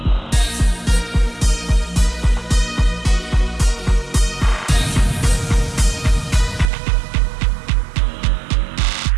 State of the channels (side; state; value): left; drops out; at 6.7 s